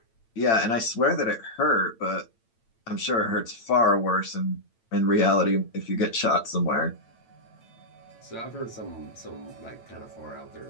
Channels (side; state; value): right; late; 8.9 ms